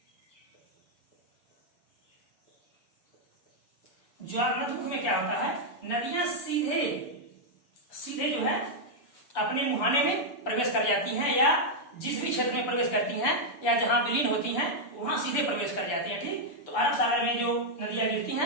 में क्या होता है? नदियां सीधे जो है अपने मुहाने में प्रवेश कर जाती हैं, या जिस भी क्षेत्र में प्रवेश करती हैं या जहां विलीन होती हैं वहां सीधे प्रवेश कर जाती हैं। ठीक, तो अरब सागर में जो नदियां गिरती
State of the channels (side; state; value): right; late; 6.9 ms